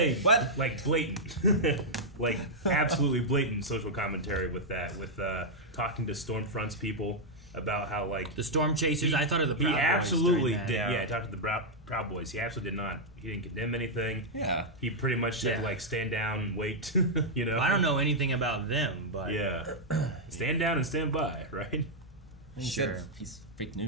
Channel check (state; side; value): normal; both; correlation -0.04